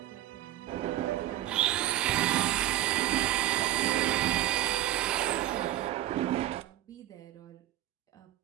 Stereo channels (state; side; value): quieter; left; 13.2 dB